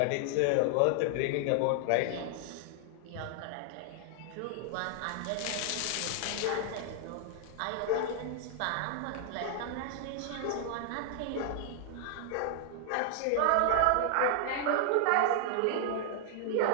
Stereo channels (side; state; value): both; different; correlation 0.00